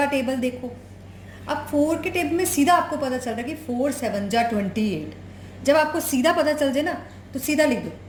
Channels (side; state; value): both; identical; correlation 1.00